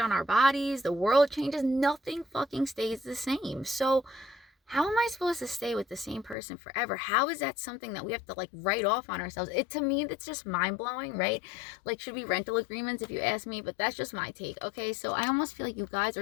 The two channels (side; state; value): right; drops out; at 6.4 s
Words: our bodies, the world changes, nothing fucking stays the same. So how am I supposed to stay with the same person forever? How is that something that we have to like write off on ourselves? To me, that's just mind-blowing, right? Like, should be rental agreements if you ask me, but that's just my take. Okay, so I almost feel like you guys